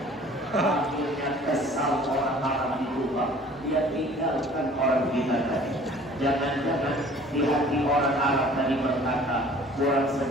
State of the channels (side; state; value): both; normal; correlation 0.50